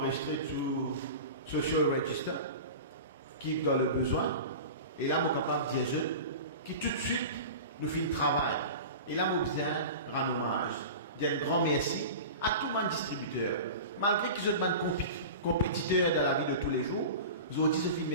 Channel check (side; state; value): both; inverted; correlation -0.32